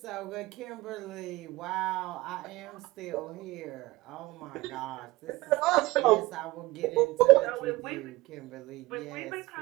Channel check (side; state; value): left; quieter; 20.2 dB